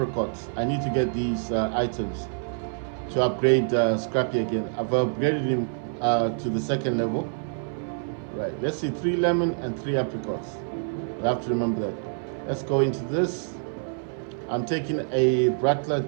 I need to get these items to upgrade Scrappy again. I've upgraded him to the 2nd level. Right, let's see, 3 lemon and 3 apricots. I'll have to remember that. Let's go into this. I'm taking a Rattler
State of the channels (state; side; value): silent; left; 61 dB below the other